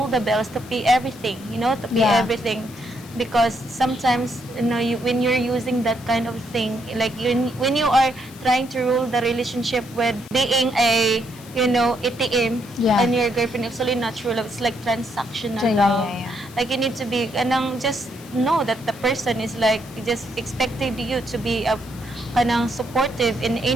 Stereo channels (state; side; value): noise; left; hiss, 20 dB below the sound